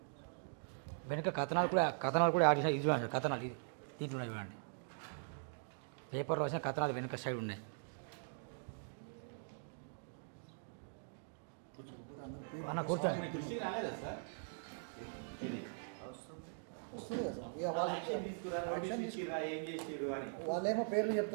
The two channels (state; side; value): silent; left; digital silence